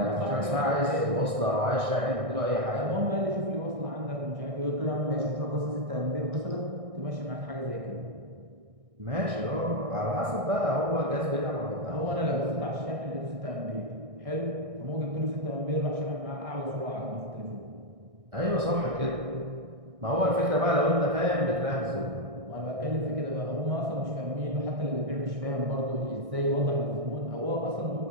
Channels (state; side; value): late; left; 1.6 ms